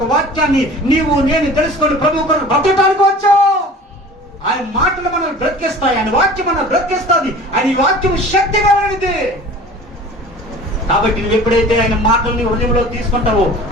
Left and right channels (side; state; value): both; normal; correlation 0.42